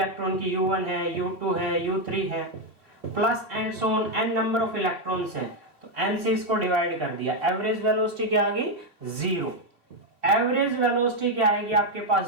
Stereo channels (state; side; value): late; left; 3.3 ms